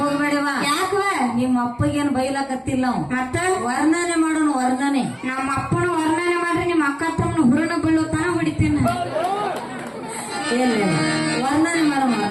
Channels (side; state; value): both; identical; correlation 1.00